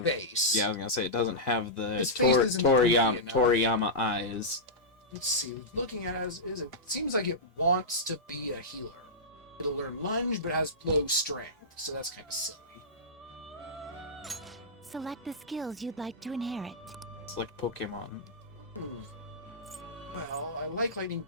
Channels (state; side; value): normal; both; correlation -0.13